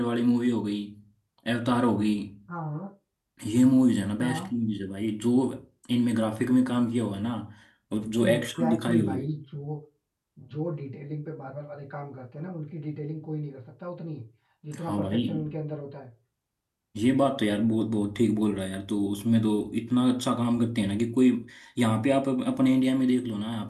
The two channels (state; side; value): identical; both; correlation 1.00